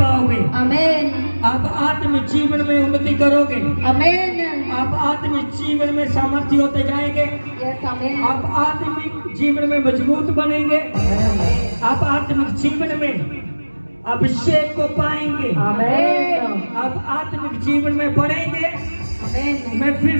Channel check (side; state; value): both; inverted; correlation -1.00